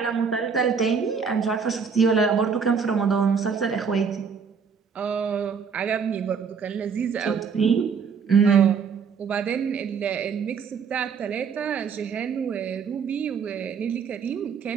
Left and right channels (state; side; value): quieter; left; 6.1 dB